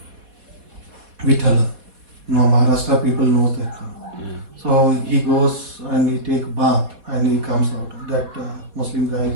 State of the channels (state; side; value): late; left; 4.1 ms